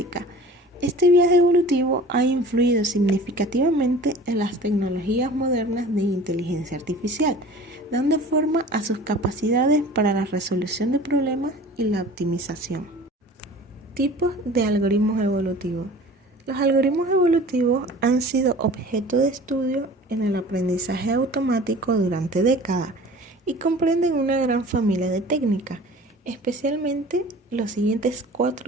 Este viaje evolutivo ha influido significativamente en las tecnologías modernas de inteligencia artificial, dando forma a sus capacidades para la resolución de problemas y la optimización. Tipos de algoritmos evolutivos. Los algoritmos evolutivos han sido objeto de estudio en el aprendizaje automático durante décadas y comprenden una gran familia de técnicas, especialmente los siguientes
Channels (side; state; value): both; normal; correlation 0.43